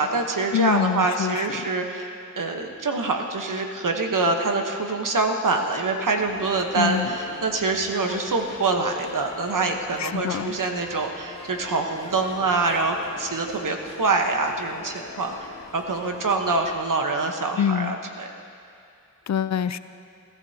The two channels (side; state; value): both; normal; correlation -0.04